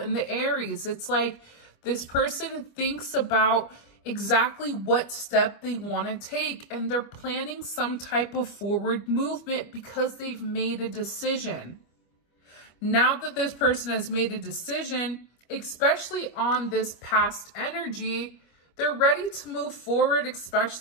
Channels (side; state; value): right; late; 25 ms